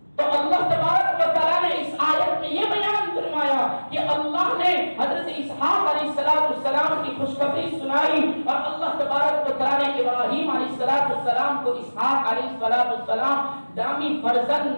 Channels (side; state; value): both; inverted; correlation -1.00